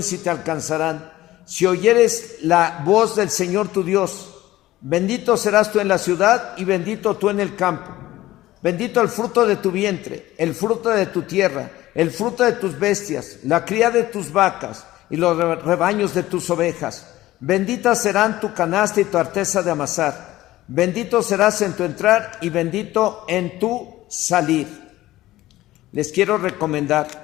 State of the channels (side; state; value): right; quieter; 16.1 dB